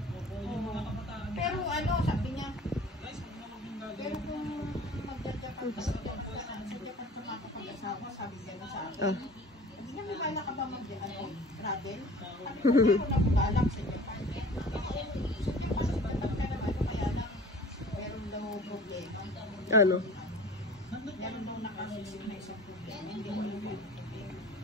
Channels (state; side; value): normal; both; correlation 0.44